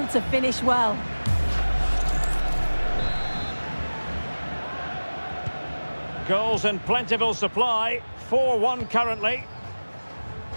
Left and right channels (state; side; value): inverted; both; correlation -1.00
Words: to finish well. Goals in plentiful supply, 4-1 currently.